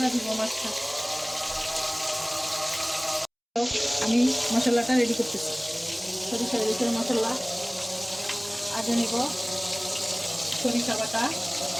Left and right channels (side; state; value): both; identical; correlation 1.00